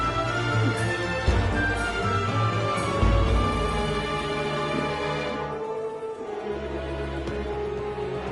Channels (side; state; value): both; identical; correlation 1.00